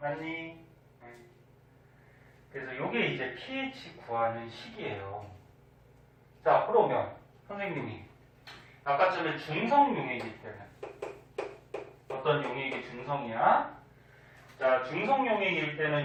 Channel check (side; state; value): both; identical; correlation 1.00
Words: 그래서 요게 이제 pH 구하는 식이에요. 자, 그러면 선생님이 아까 전에 중성 용액일 때는 어떤 용액이 중성이야? 자, 중성 용액일